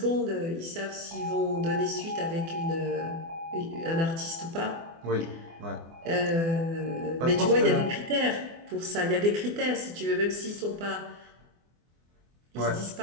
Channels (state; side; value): late; left; 24 ms